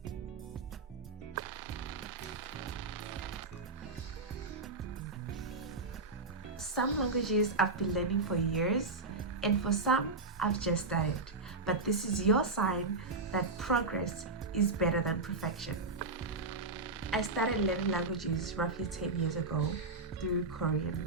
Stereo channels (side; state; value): left; quieter; 3.5 dB